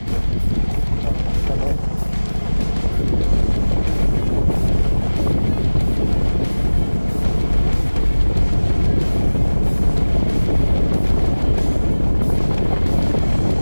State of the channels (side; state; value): both; inverted; correlation -1.00